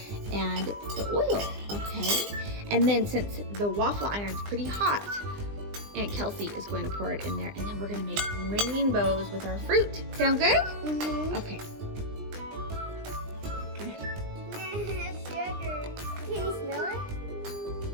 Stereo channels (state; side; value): late; left; 20 ms